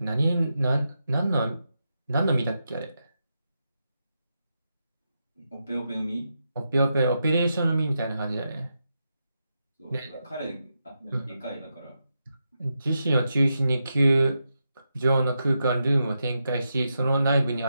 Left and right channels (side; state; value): both; inverted; correlation -0.86